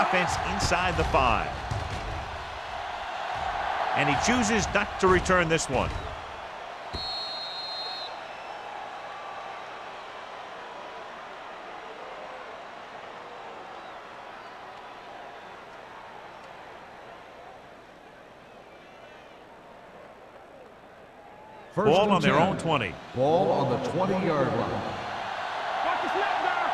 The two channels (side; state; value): both; identical; correlation 1.00